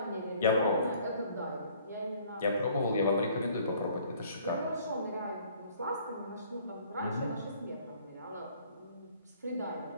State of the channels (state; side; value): inverted; both; correlation -0.56